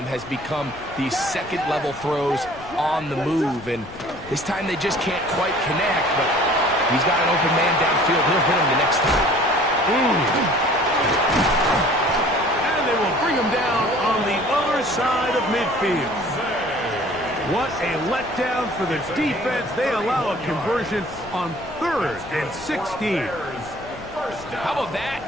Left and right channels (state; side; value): noise; left; rumble, 20 dB below the sound